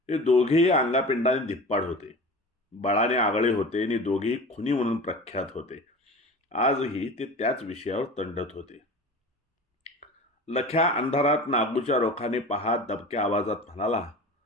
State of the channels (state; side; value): normal; both; correlation 0.35